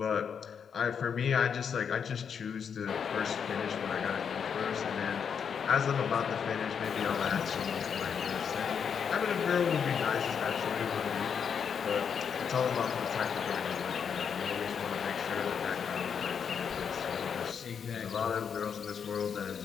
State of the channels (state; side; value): quieter; right; 7.0 dB